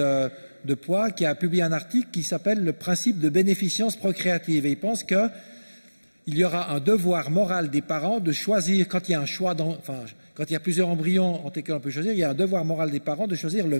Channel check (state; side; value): inverted; both; correlation -1.00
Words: poids, qui a publié un article qui s'appelle « Le principe de bénéficence procréative ». Et il pense qu'il y aura un devoir moral des parents de choisir, quand il y a un choix, quand il y a plusieurs embryons entre lesquels on peut choisir, il y a un devoir moral des parents de choisir le